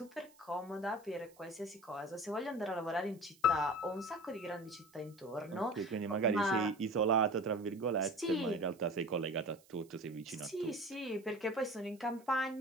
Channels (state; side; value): noise; right; hiss, 28 dB below the sound